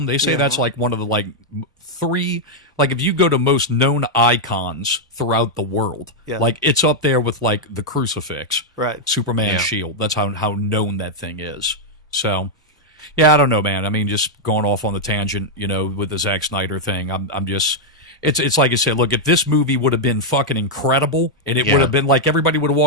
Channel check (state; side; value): normal; both; correlation -0.02